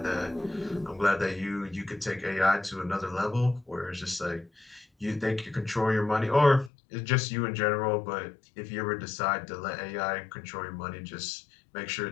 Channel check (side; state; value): right; drops out; at 6.7 s